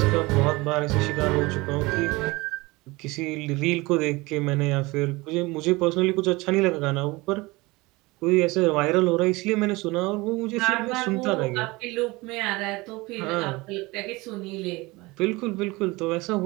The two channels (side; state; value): left; quieter; 22.6 dB